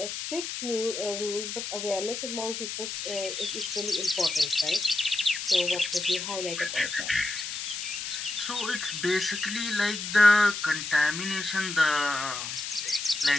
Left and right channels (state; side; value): noise; left; hiss, 5 dB below the sound